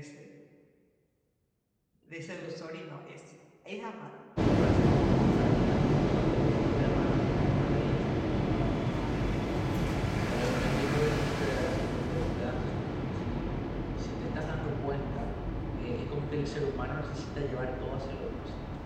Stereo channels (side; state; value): both; identical; correlation 1.00